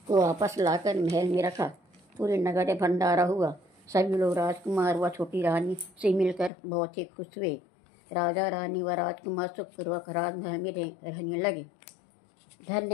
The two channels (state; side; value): drops out; right; at 6.5 s